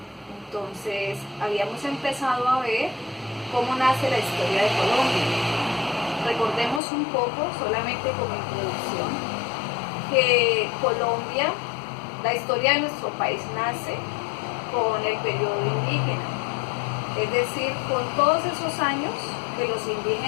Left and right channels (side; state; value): right; drops out; at 6.8 s